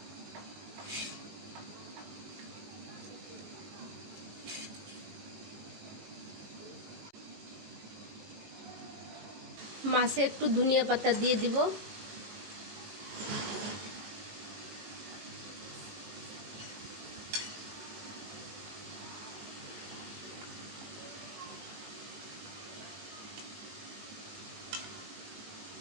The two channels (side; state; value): left; late; 18 ms